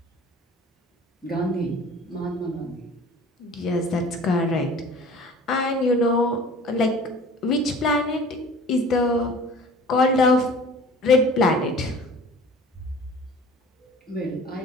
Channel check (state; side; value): normal; both; correlation 0.45